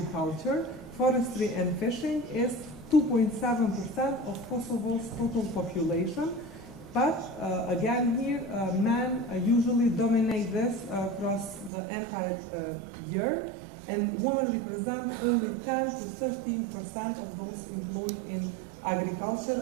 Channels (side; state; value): left; drops out; at 11.7 s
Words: forestry, and fishing is 2.7% of Kosovo's total population. But again here, men usually dominate this across the entire year, and women represent only 10 to 13% of those employed in agriculture